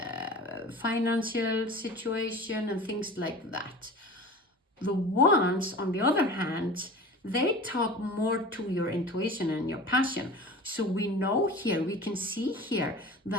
financial situation and things like that. The wands, on the other hand, they talk more to your intuition and your passion. So we know here, we can see here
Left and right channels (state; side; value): normal; both; correlation 0.37